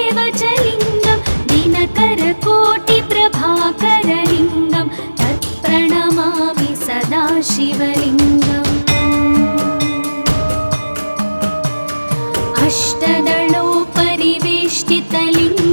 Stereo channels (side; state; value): both; inverted; correlation -1.00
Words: च लिङ्गं दिनकरकोटिप्रभाकरलिङ्गं तत्प्रणमामि सदाशिवलिङ्गम्